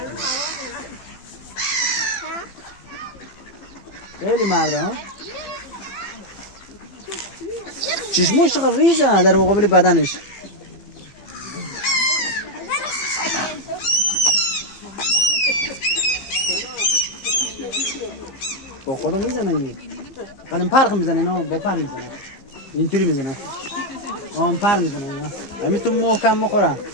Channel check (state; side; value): late; right; 15 ms